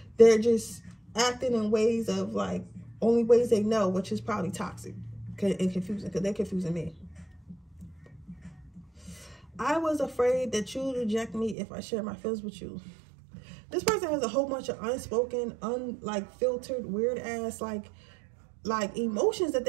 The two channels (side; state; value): left; drops out; at 11.6 s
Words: they're just acting in ways of like only ways they know, which is probably toxic and confusing because they're confusing me. I was afraid that you would reject me if I share my feelings with you. This person has a whole bunch of unspoken, filtered, weird ass like emotions that